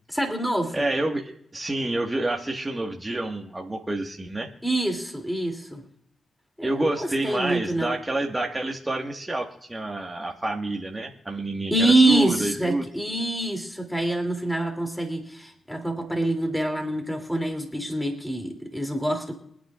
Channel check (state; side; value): normal; both; correlation 0.89